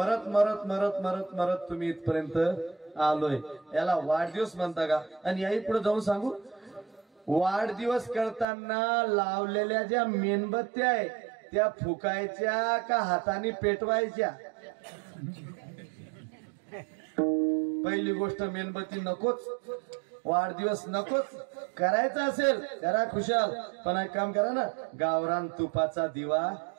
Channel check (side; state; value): left; drops out; at 8.5 s